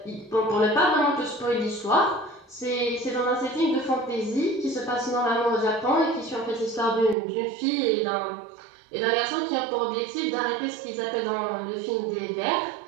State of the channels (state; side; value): drops out; left; at 7.2 s